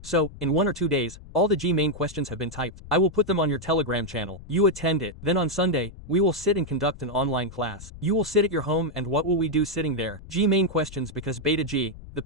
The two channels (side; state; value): left; noise; rumble, 16 dB below the sound